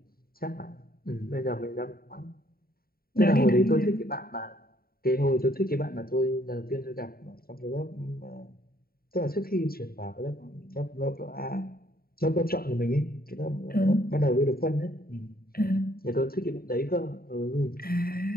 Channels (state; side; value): late; right; 0.43 ms